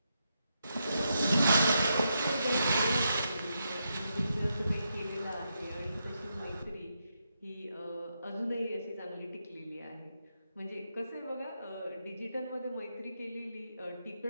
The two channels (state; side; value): inverted; both; correlation -0.83